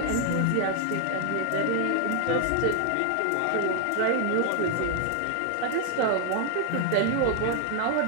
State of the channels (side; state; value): both; different; correlation 0.00